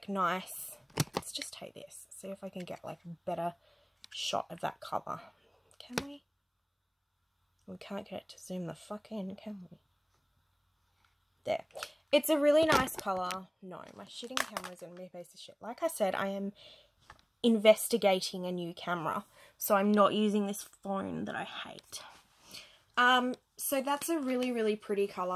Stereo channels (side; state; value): both; identical; correlation 1.00